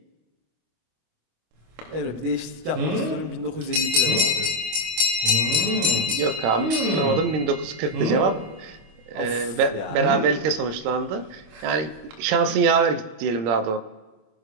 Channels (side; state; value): left; late; 25 ms